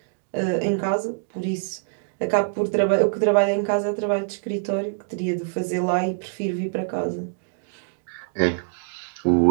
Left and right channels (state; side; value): silent; left; digital silence